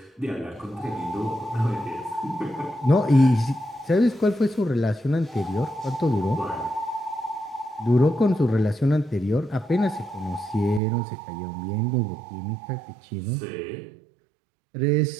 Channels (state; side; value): drops out; left; at 10.8 s